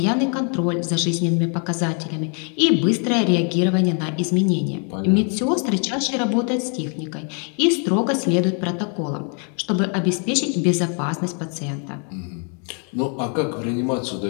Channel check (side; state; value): right; quieter; 39.6 dB